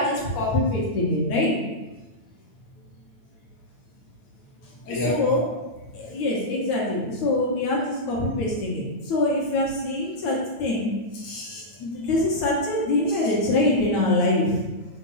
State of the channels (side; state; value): right; late; 8.9 ms